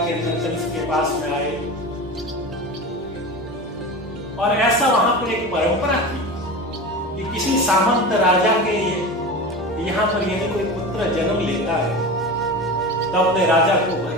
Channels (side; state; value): both; normal; correlation 0.29